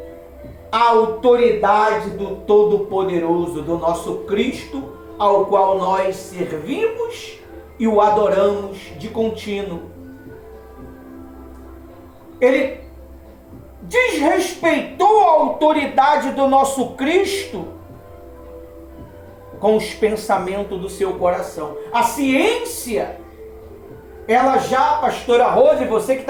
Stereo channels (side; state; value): both; identical; correlation 1.00